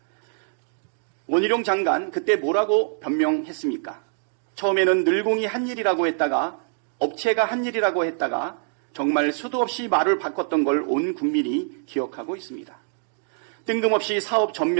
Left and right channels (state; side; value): silent; left; digital silence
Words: 원희룡 장관 그때 뭐라고 변명했습니까? 처음에는 늘공이 한 일이라고 했다가 업체가 한 일이라고 했다가 정말 수도 없이 말을 바꿨던 걸 온 국민이 기억하고 있습니다. 뜬금없이 사업